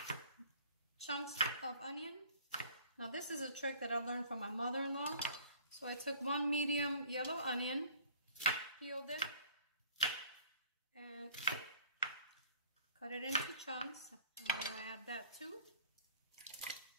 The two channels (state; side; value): inverted; both; correlation -0.52